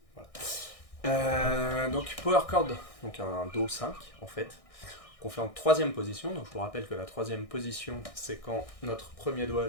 Voilà. Donc power chord, donc un Do 5 en fait, qu'on fait en troisième position. Donc je vous rappelle que la troisième position, c'est quand notre premier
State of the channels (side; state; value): right; late; 1.6 ms